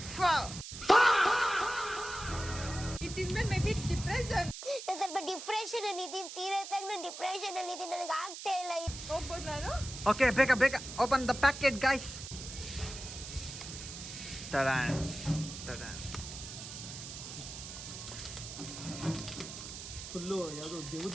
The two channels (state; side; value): noise; right; hiss, 10 dB below the sound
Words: ಇದ್ಮೇಲೆ ಮೇ ಬಿ ಡಿಪ್ರೆಷನ್. ಸ್ವಲ್ಪ ಡಿಪ್ರೆಷನ್ ಅಲ್ಲಿ ಇದೀನಿ. ಸೀರಿಯಸ್ ಆಗಿ ನಾನು ಡಿಪ್ರೆಷನ್ ಅಲ್ಲಿ ಇದೀನಿ. ನನಗೆ ಆಗ್ತಾ ಇಲ್ಲ. ಹೋಗ್ಬೋದು ನಾನು? ಓಕೆ ಬೇಗ ಓಪನ್ ದ ಪ್ಯಾಕೆಟ್ ಗೈಸ್. ತಡಾನ್ ಫುಲ್ಲು ಯಾವ್ದು